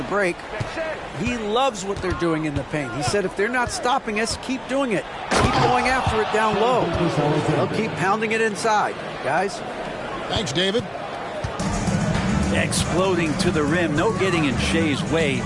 break. He loves what they're doing in the paint. He said if they're not stopping us, keep doing it. Keep going after it down low. They'll keep pounding it inside, guys. Thanks, David. Exploding to the rim. No getting in Shea's way,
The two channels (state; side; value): identical; both; correlation 1.00